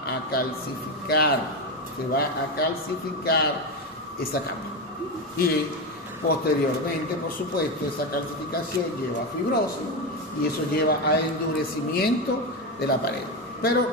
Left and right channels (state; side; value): normal; both; correlation 0.14